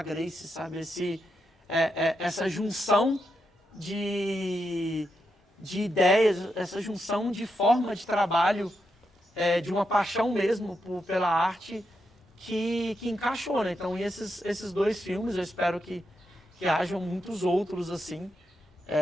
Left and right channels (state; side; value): normal; both; correlation 0.84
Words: Grace, sabe, essa junção de ideias, essa junção de forma de trabalho, de uma paixão mesmo pela arte que encaixou, né? Então, esses dois filmes, eu espero que hajam muitos outros assim.